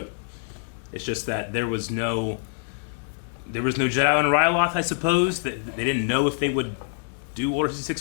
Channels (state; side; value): silent; right; digital silence